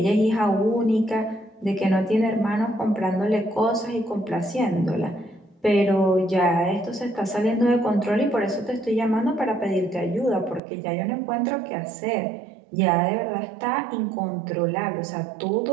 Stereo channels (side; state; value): left; drops out; at 10.6 s